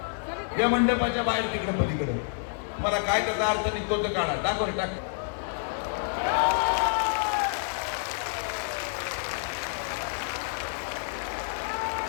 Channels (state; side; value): silent; right; 59 dB below the other